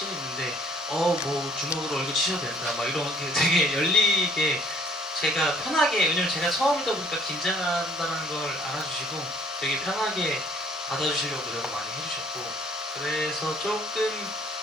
있는데 뭐 주먹으로 얼굴 치셔도 된다 막 이런 게 되게 열리게 제가 편하게, 왜냐면 제가 처음이다 보니까 긴장한다는 걸 알아주시고 되게 편하게 받아주시려고 노력을 많이 해주셨고, 그래서 조금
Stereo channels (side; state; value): both; normal; correlation 0.59